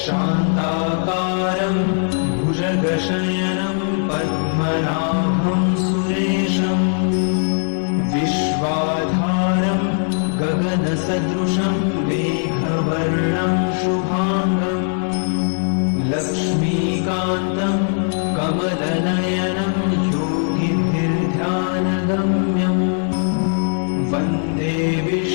शान्ताकारं भुजगशयनं पद्मनाभं सुरेशं विश्वाधारं गगनसदृशं मेघवर्णं शुभांगं लक्ष्मीकान्तं कमलनयनं योगिभिर्ध्यानगम्यं वन्दे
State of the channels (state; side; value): silent; right; digital silence